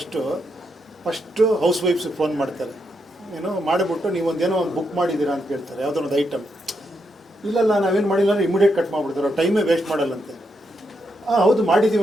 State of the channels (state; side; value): normal; both; correlation 0.81